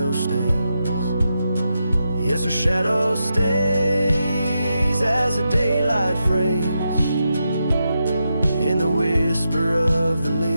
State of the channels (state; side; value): inverted; both; correlation -0.86